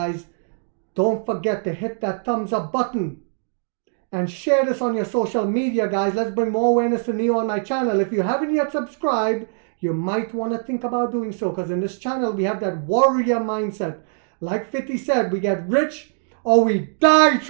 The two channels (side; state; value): left; silent; 59 dB below the other